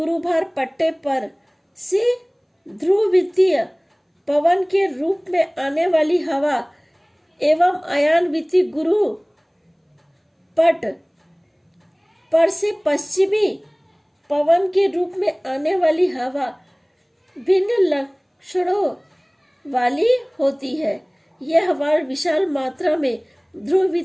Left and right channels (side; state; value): both; identical; correlation 1.00